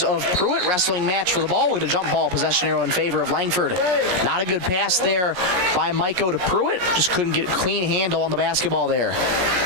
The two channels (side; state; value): left; late; 17 ms